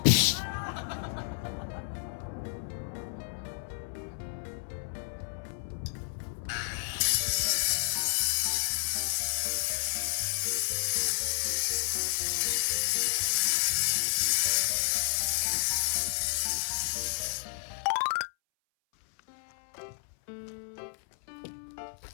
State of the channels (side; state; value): right; silent; 57 dB below the other